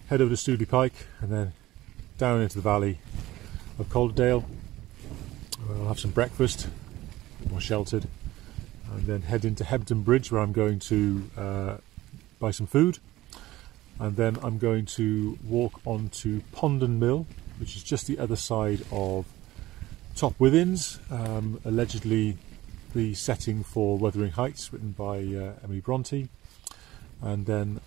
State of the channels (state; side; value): quieter; left; 16.6 dB